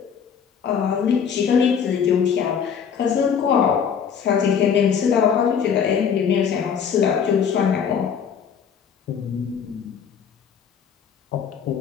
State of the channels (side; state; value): right; quieter; 7.3 dB